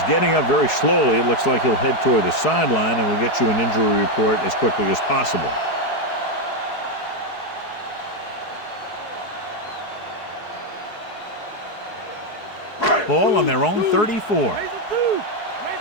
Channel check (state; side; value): late; right; 4.7 ms